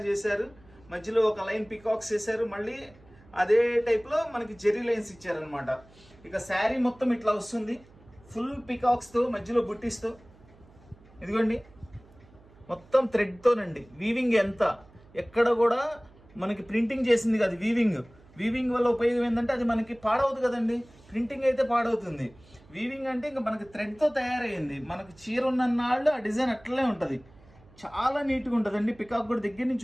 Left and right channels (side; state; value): right; noise; hum, 26 dB below the sound